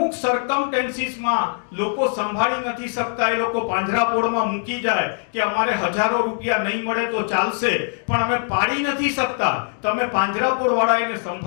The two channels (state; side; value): silent; right; digital silence